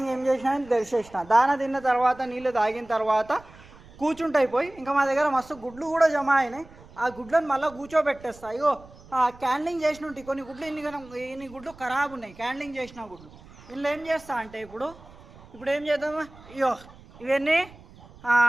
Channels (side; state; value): right; noise; rumble, 22 dB below the sound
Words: ఏం చేసినా తెరిచేసిన. దాన తిన్న తర్వాత నీళ్ళు తాగిన తర్వాత కూర్చుంటాయి పోయి. ఇంకా మా దగ్గర మస్తు గుడ్లు కూడా జమ అయినాయి. ఆ గుడ్లను మళ్ళీ కూర్చోబెట్టేస్తా. అయ్యో క్యాండ్లింగ్ చేసిన ఉంటాయి కొన్ని గుడ్లు, ఇన్ని గుడ్లు ఖరాబ్ ఉన్నాయి క్యాండ్లింగ్ చేసిన గుడ్లు. ఇందులో ఏం చేస్తా అంటే ఇప్పుడు ఏం చేద్దామా, అయ్యో ఇవన్నీ